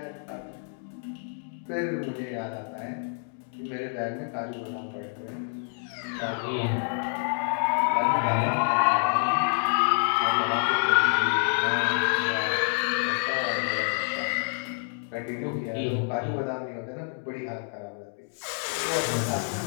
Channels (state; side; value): silent; right; 60 dB below the other